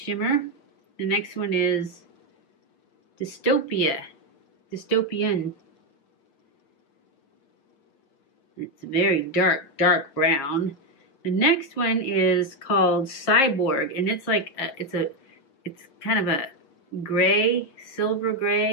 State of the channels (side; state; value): right; late; 7.3 ms